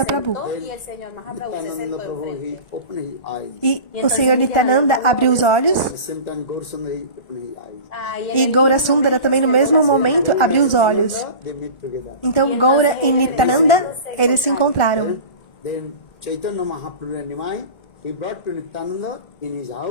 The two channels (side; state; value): right; late; 1.4 ms